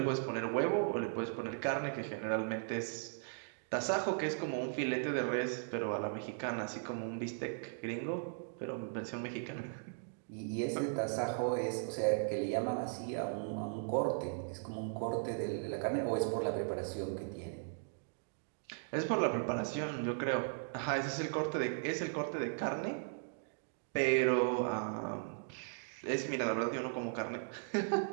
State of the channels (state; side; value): silent; left; digital silence